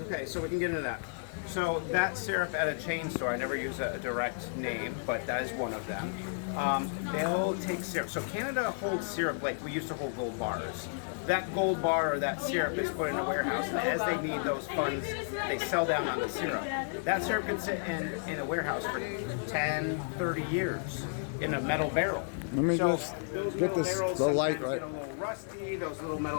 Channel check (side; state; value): right; silent; 56 dB below the other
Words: Okay, so we can get into that. So that syrup at a chain store, I never use a direct name, but that is one of them. They'll take syrup. So Canada holds syrup like we used to hold gold bars. That gold bar or that syrup is put in a warehouse, and as they need those funds, they sell down on the syrup. That syrup can sit in a warehouse for 10, 30 years in a metal barrel. Let me just get the light right. Get a little rusty. Those little